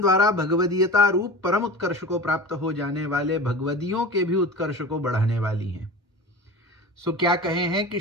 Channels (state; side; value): normal; both; correlation 0.34